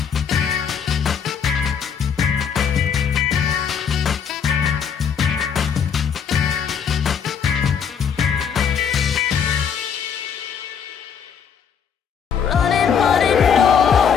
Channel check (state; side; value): quieter; right; 7.3 dB